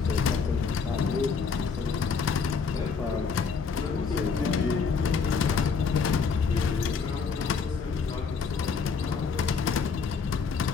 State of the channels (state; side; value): quieter; right; 5.4 dB